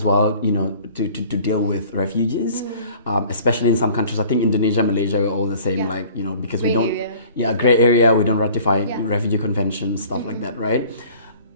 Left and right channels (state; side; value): inverted; both; correlation -0.49